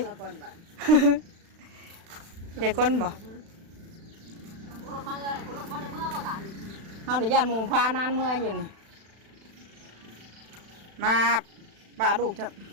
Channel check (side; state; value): left; late; 36 ms